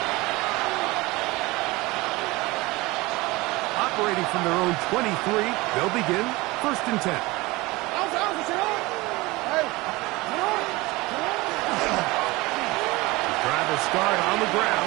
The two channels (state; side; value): quieter; left; 21.9 dB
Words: Operating from their own 23, they'll begin 1st and 10. Driver start on the